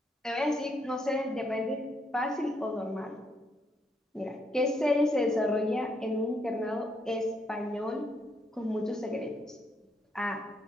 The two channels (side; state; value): both; normal; correlation 0.75